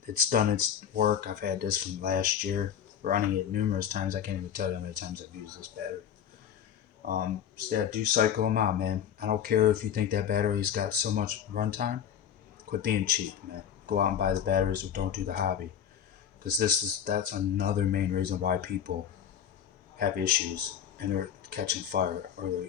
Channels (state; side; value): quieter; right; 9.0 dB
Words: it's done its work. I've had this from last year, running it numerous times. I can't even tell you how many times I've used this battery. Yeah, do cycle them out, man. I don't care if you think that battery's got so much runtime. Quit being cheap, man. Go out and buy the batteries, or don't do the hobby. Because that's another main reason why people have issues and they're catching fire, or